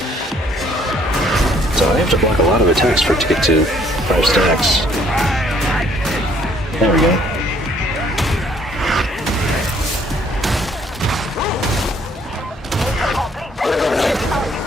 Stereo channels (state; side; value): normal; both; correlation 0.63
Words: So I have to block a lot of attacks for it to get to 5 stacks. There we go.